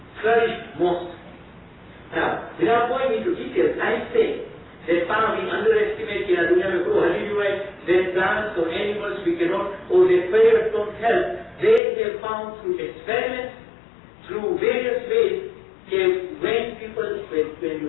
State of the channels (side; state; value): right; drops out; at 11.8 s